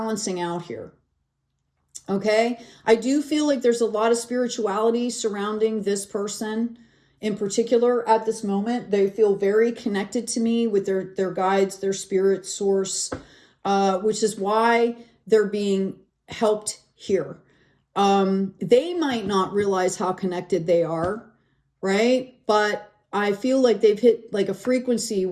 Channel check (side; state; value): both; identical; correlation 1.00